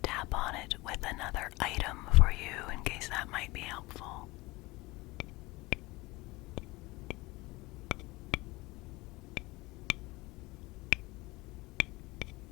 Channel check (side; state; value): right; quieter; 21.9 dB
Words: tap on it with another item for you in case that might be helpful.